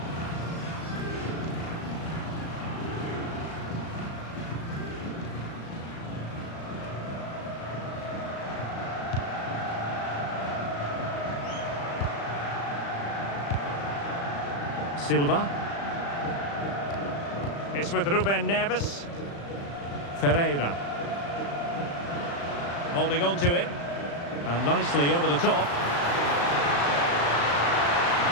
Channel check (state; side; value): late; right; 35 ms